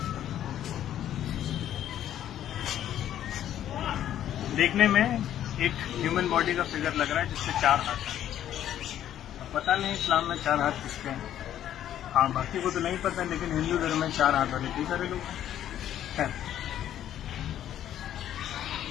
देखने में एक ह्यूमन बॉडी का फिगर लग रहा है जिससे 4 हाथ हैं। पता नहीं इस्लाम में 4 हाथ किसके हैं, हाँ बाकी को तो नहीं पता, लेकिन हिंदू धर्म में 4 हाथ वाले कई सारे लोग हैं।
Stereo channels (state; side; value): quieter; right; 11.3 dB